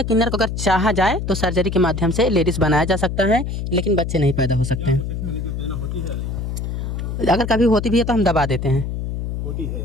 किन्नर को अगर चाहा जाए तो सर्जरी के माध्यम से लेडीज बनाया जा सकता है, लेकिन बच्चे नहीं पैदा हो सकते हैं। अगर कभी होती भी है तो हम दबा देते हैं, होती है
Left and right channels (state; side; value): noise; left; hum, 4 dB below the sound